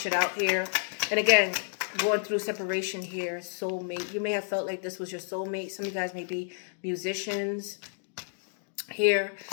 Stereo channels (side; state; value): right; silent; digital silence